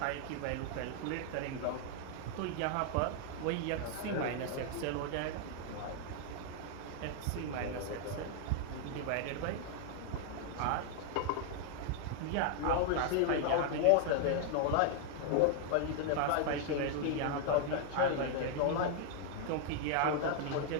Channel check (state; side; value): different; both; correlation 0.00